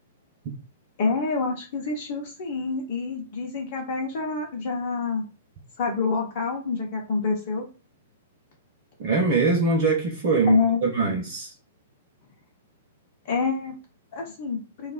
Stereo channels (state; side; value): inverted; both; correlation -0.38